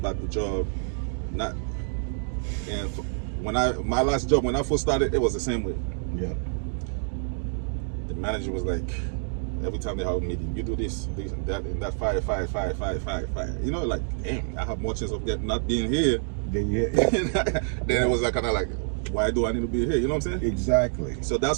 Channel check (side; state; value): left; silent; 60 dB below the other